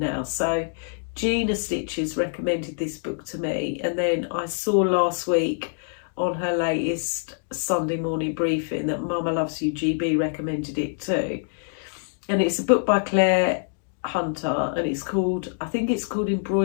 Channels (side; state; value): right; silent; digital silence